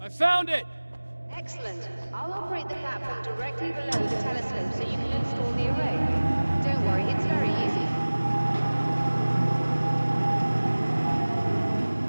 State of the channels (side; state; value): both; inverted; correlation -1.00